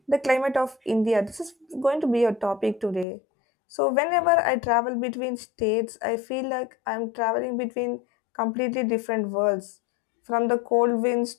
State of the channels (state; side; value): drops out; right; at 3.1 s